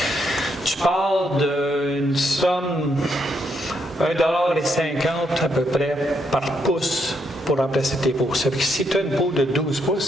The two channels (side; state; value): both; normal; correlation 0.77